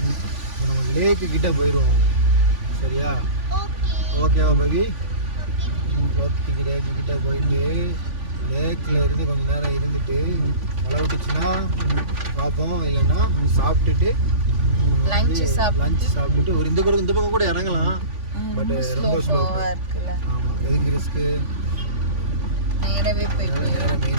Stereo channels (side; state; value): left; late; 3.5 ms